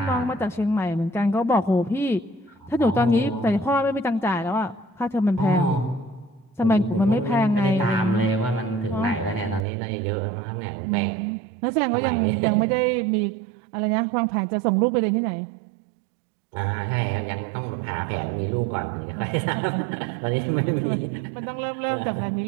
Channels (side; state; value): left; drops out; at 9.7 s